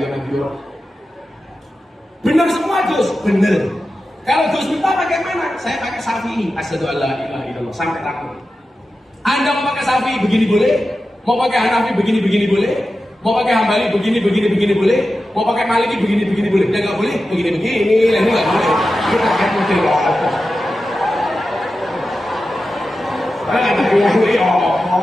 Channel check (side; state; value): both; normal; correlation 0.92